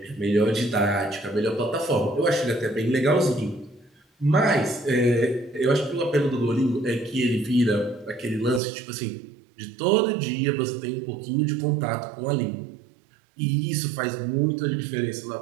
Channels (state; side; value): drops out; left; at 8.6 s